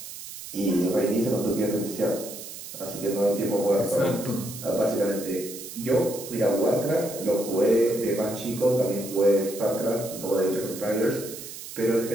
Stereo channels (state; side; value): noise; right; hiss, 12 dB below the sound